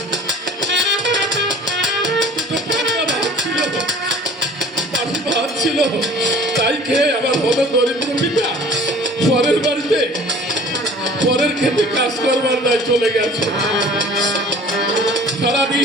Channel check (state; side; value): normal; both; correlation 0.47